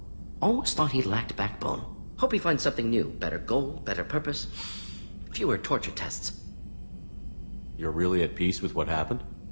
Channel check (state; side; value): inverted; both; correlation -1.00